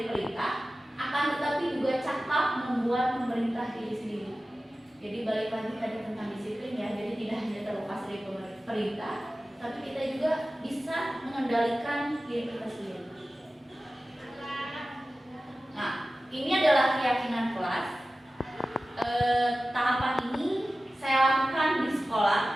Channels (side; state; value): both; normal; correlation 0.95